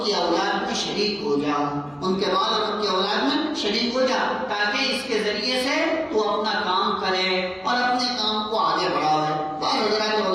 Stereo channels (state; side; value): identical; both; correlation 1.00